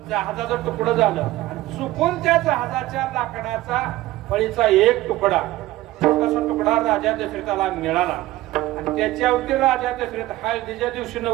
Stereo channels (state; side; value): quieter; left; 16.8 dB